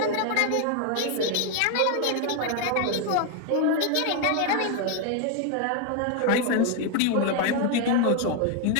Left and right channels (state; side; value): different; both; correlation 0.01